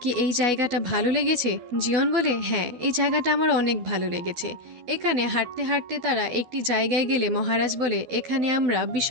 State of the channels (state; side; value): late; left; 12 ms